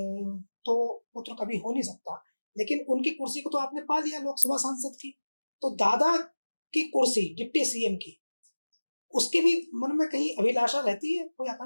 तो पुत्र कभी हो नहीं सकता, लेकिन उनकी कुर्सी को तो आपने पा लिया लोकसभा सांसद की, तो दादा की कुर्सी डिप्टी सीएम की, उसके भी मन में कहीं अभिलाषा रहती है, कोई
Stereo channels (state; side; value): inverted; both; correlation -1.00